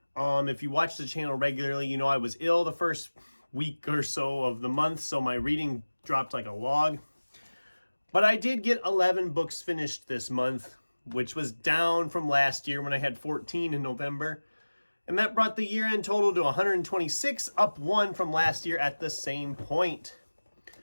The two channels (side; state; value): both; inverted; correlation -1.00